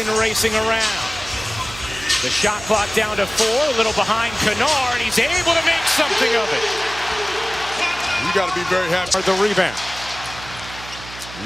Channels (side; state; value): right; noise; hum, 15 dB below the sound